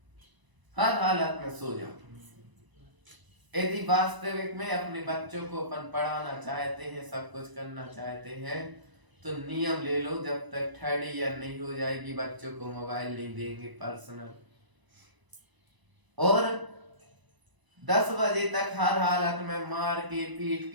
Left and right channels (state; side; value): late; left; 1.0 ms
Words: हर हालत में सो जाओ। यदि वास्तविक में अपने बच्चों को अपन पढ़ाना चाहते हैं, सब कुछ करना चाहते हैं, तो नियम ले लो, जब तक 3rd ईयर नहीं हो जाएगी बच्चों को मोबाइल नहीं देंगे पर्सनल। और 10 बजे तक हर हालत में मार के, पीट